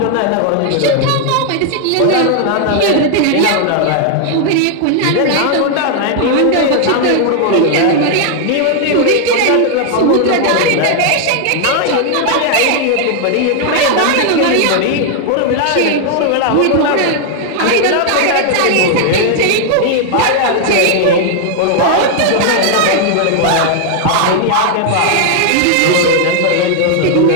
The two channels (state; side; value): different; both; correlation 0.00